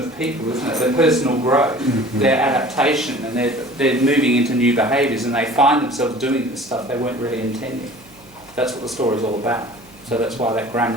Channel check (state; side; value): noise; right; hum, 29 dB below the sound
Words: people, isn't it? Their personal growth, their adaptation, and they're moving into new behaviours, and they find themselves doing this stuff they weren't really intending. That's what the story is all about. So that's why that